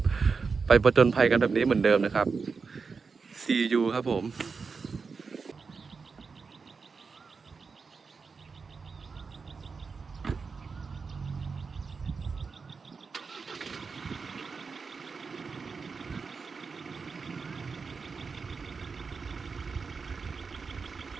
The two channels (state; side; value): quieter; left; 5.0 dB